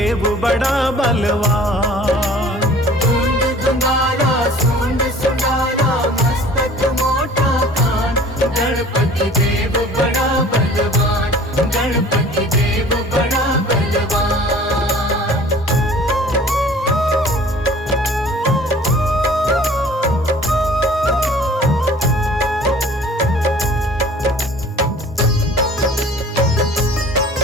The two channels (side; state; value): both; normal; correlation 0.48